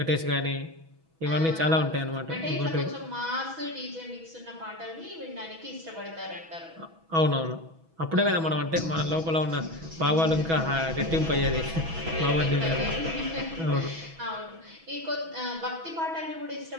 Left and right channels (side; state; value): left; late; 6.1 ms